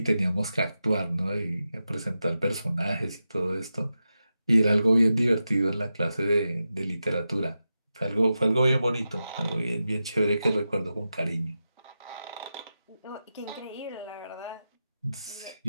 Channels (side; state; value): both; inverted; correlation -0.91